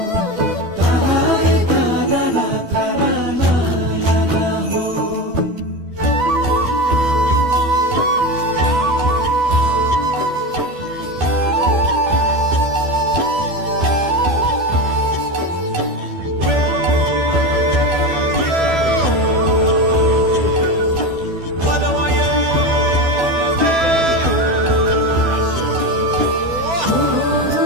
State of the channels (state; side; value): late; left; 12 ms